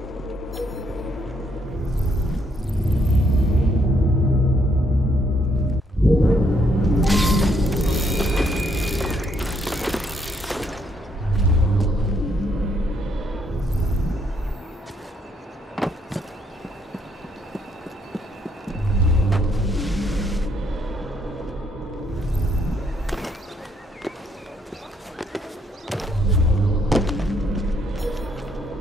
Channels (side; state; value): both; normal; correlation 0.71